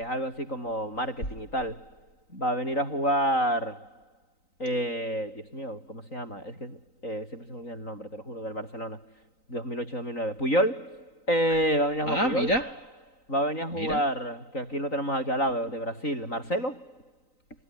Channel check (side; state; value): right; late; 3.9 ms